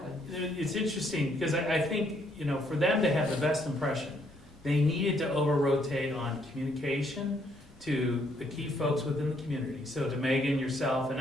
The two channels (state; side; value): normal; both; correlation 0.70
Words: it's interesting, because I think, you know, for them to have the best impression, they needed to over-rotate on communication to the key folks within the community. So to Megan, yourself, and